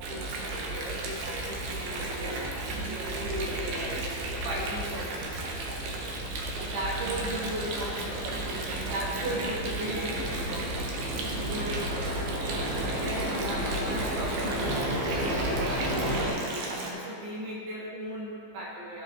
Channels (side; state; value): left; late; 15 ms